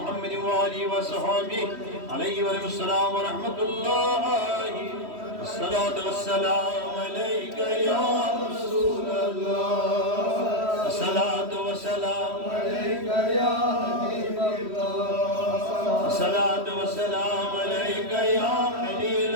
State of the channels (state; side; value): late; left; 3.1 ms